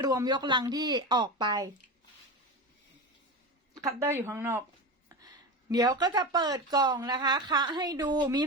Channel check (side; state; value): both; normal; correlation 0.23